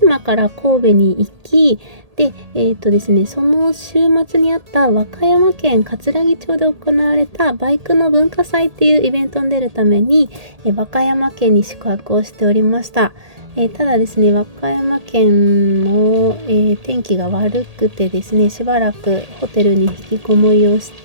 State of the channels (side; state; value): left; late; 1.8 ms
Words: から神戸に行き、で、ですね、その週末にあった和歌山県かつらぎ町で行われたバイクの文化祭っていうイベントに出るために、和歌山県に宿泊をしておりました。ただですね、和歌山県の、天気が悪くてですね、しばらくホテルに引きこもりをし